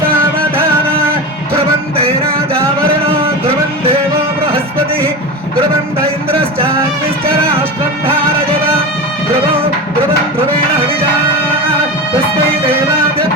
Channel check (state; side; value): normal; both; correlation 0.25